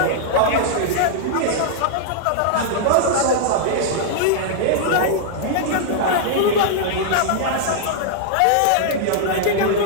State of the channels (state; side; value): different; both; correlation -0.01